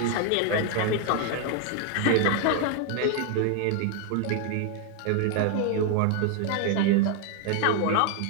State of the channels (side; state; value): both; different; correlation 0.00